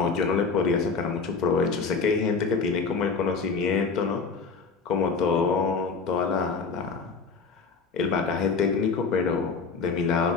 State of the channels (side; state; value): right; quieter; 4.8 dB